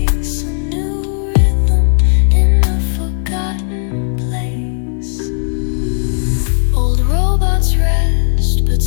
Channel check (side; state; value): right; silent; digital silence